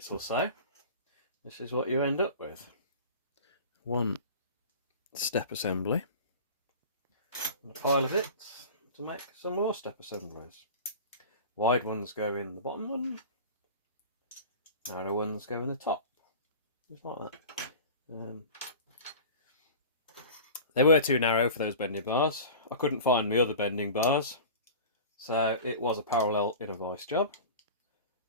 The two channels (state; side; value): inverted; both; correlation -0.36